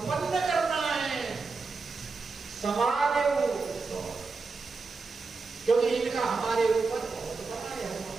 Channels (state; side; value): quieter; left; 4.3 dB